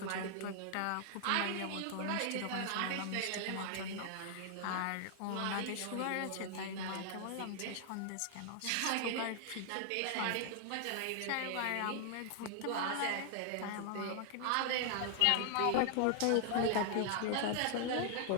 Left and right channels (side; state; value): both; different; correlation 0.00